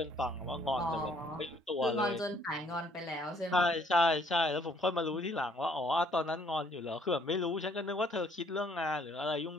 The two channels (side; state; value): both; normal; correlation 0.64